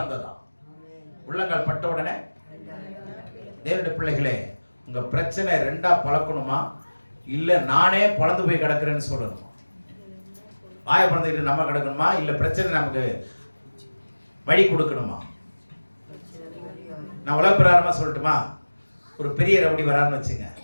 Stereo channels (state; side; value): inverted; both; correlation -1.00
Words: உள்ளங்கால் பட்ட உடனே. தேவனுடைய பிள்ளைகளே, உங்க பிரச்சனை ரெண்டா பழக்கணுமா இல்ல நானே பழந்து போய் கிடக்குறேன்னு சொல்லணுமா? வாய பழந்துக்கிட்டு நம்ம கிடக்கணுமா இல்ல பிரச்சனை நமக்கு வழி கொடுக்கணுமா? நான் உலக பிரகாரமா சொல்லட்டுமா? ஒரு பெரிய ரவுடி வரான்னு வச்சுங்க,